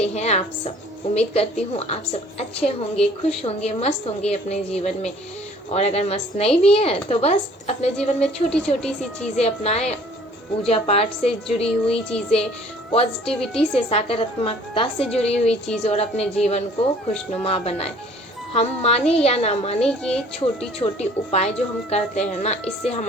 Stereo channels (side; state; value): both; normal; correlation 0.54